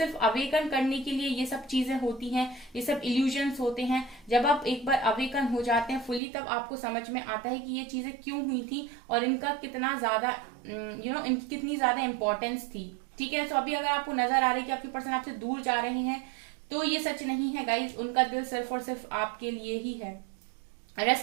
अवेकन करने के लिए ये सब चीजें होती हैं, ये सब इल्यूजन्स होते हैं। जब आप एक बार अवेकन हो जाते हैं फुली, तब आपको समझ में आता है कि ये चीजें क्यों हुई थी और इनका कितना ज्यादा इनकी कितनी ज्यादा इंपॉर्टेंस थी। ठीक है, तो अभी अगर आपको नजर आ रही है कि आपके पर्सन आपसे दूर जा रहे हैं, तो ये सच नहीं है गाइज, उनका दिल सिर्फ और सिर्फ आपके लिए ही है।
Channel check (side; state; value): left; drops out; at 6.2 s